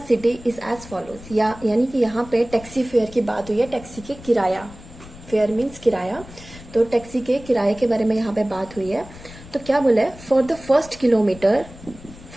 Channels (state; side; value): noise; left; rumble, 18 dB below the sound